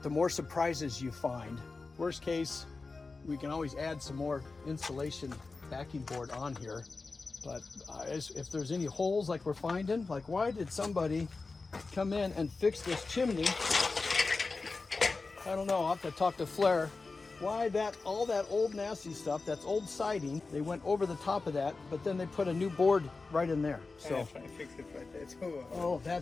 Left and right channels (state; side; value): quieter; right; 3.9 dB